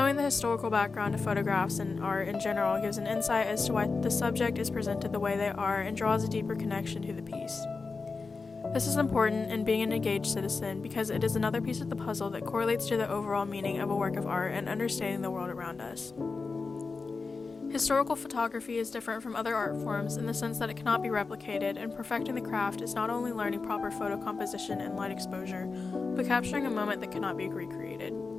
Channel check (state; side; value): quieter; right; 4.3 dB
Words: the historical background of photographs and art in general gives an insight as to why the subject is presented the way they are and draws a deeper connection to the piece. This is important in being an engaged citizen because it is another piece of the puzzle that correlates to the overall meaning of a work of art and understanding the world around us. Historical photography is different from other art forms in the sense that it cannot be replicated, and perfecting the craft is not only learning proper photo composition and light exposure, but capturing a moment that cannot be recreated.